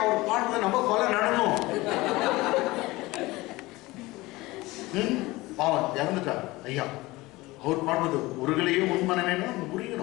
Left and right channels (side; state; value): right; quieter; 20.5 dB